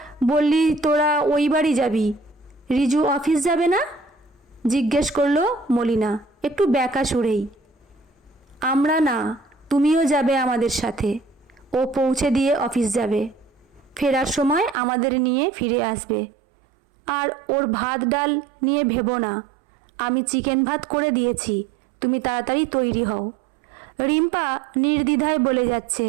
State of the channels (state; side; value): drops out; left; at 14.8 s